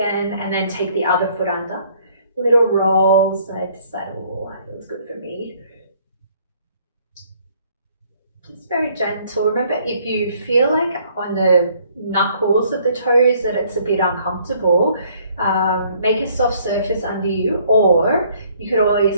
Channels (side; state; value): both; inverted; correlation -0.62